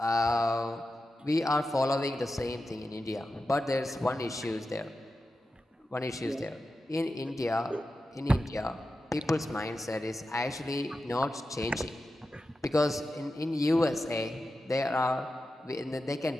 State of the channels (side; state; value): both; normal; correlation 0.92